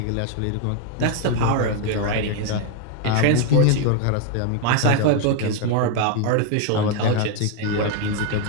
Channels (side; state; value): both; different; correlation 0.00